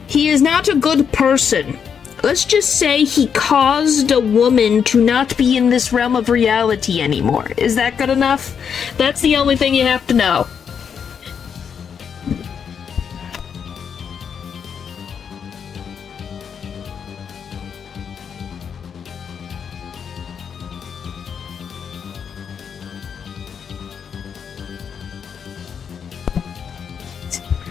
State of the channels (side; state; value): right; quieter; 7.2 dB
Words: He is not a good person. Let's just say he caused a woman to not be in this realm of reality anymore. Is that good enough? That's the only thing you have to know.